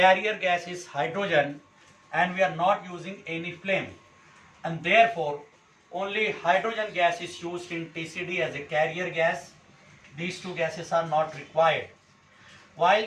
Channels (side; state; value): both; identical; correlation 1.00